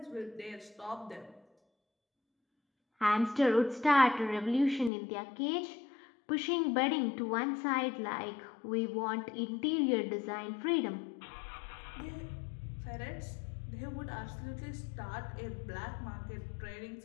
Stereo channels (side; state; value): right; drops out; at 4.9 s